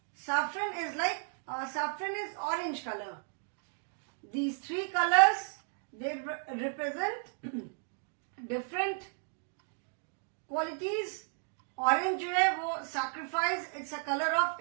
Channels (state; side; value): silent; left; 55 dB below the other